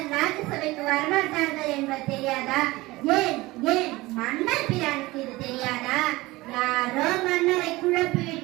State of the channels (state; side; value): quieter; left; 20.2 dB